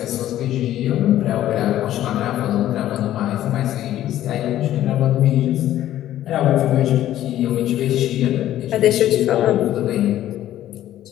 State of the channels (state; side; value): quieter; right; 12.9 dB